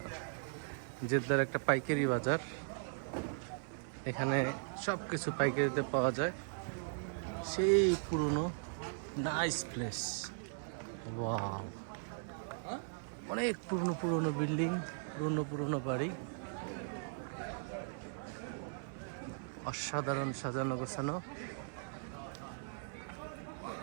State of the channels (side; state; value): left; silent; 52 dB below the other